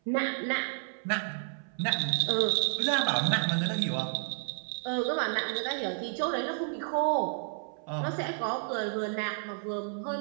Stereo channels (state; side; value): silent; left; 57 dB below the other